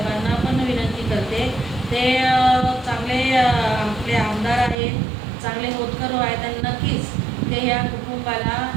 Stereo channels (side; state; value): left; drops out; at 4.8 s